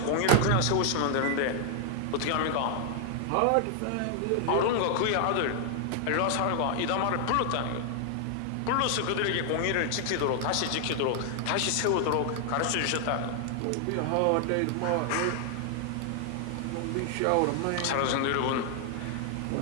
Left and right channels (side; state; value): both; different; correlation 0.00